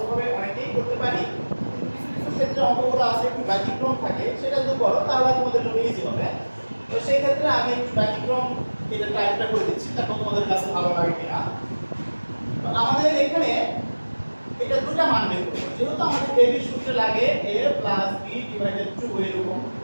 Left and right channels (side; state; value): both; inverted; correlation -1.00